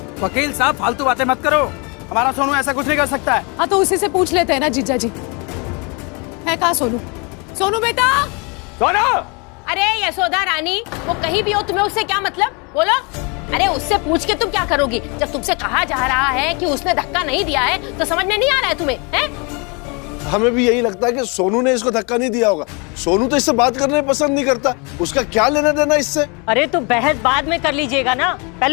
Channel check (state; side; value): quieter; right; 31.3 dB